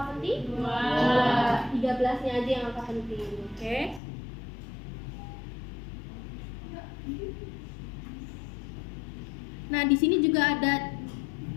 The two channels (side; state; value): right; drops out; at 4.0 s